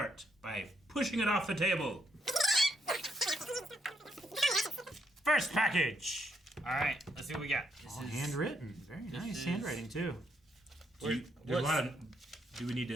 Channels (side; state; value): both; normal; correlation 0.76